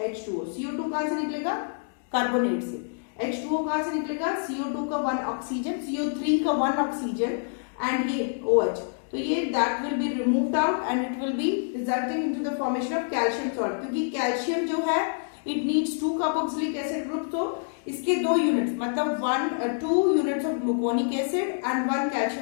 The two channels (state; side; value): silent; right; digital silence